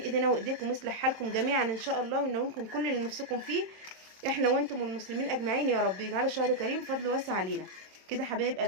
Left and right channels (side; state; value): left; late; 27 ms